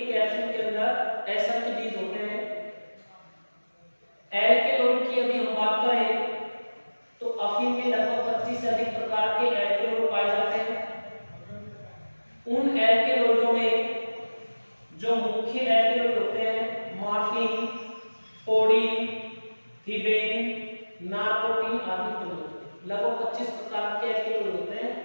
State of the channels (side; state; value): both; inverted; correlation -1.00